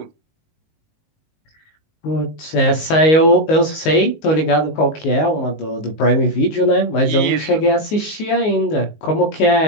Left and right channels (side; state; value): right; late; 19 ms